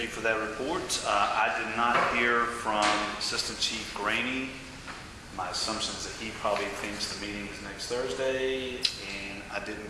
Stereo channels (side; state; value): both; identical; correlation 1.00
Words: you for that report. I did not hear from Assistant Chief Graney. My assumption is that he probably thinks the meeting is next Thursday, and I didn't